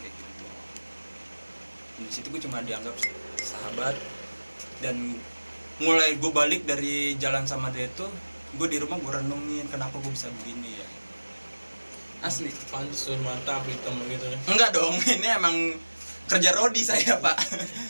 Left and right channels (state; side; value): inverted; both; correlation -1.00